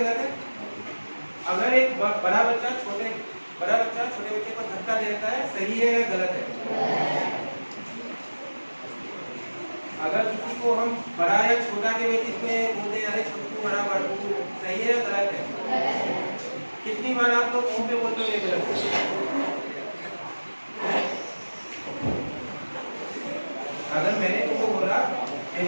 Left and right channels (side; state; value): both; inverted; correlation -1.00